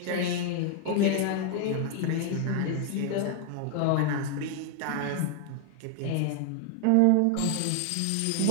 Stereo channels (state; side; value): different; both; correlation 0.00